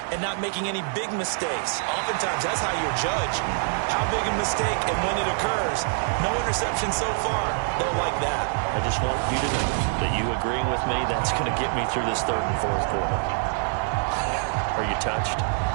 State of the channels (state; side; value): silent; left; 56 dB below the other